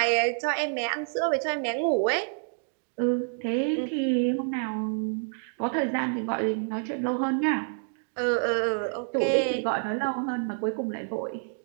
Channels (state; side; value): silent; left; digital silence